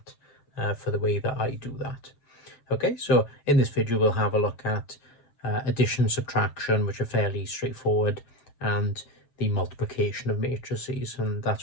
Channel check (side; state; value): right; late; 7.6 ms